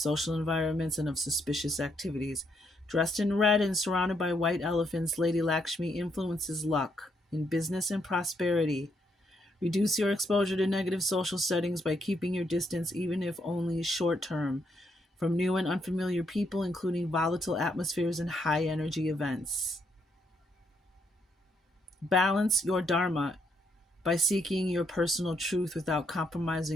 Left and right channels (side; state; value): both; normal; correlation 0.75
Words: environments and of suspicious activities. Dressed in red and surrounded by white elephants, Lady Lakshmi influences luck in business and prosperity. Reduce your exposure to negative social settings by keeping your distance, even if only short term, from new and unfamiliar people, including volatile atmospheres and high energy events. Balance your dharma by seeking your personal truth without